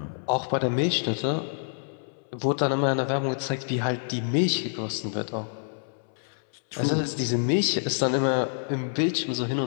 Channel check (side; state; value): right; silent; 60 dB below the other